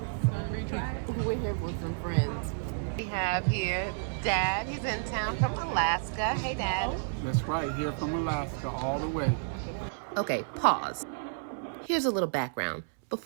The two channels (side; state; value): left; silent; 57 dB below the other